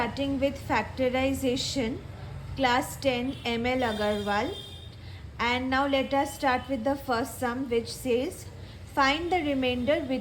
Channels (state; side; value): identical; both; correlation 1.00